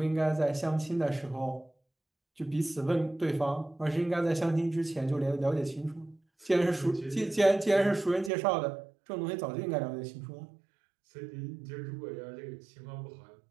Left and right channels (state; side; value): drops out; left; at 8.3 s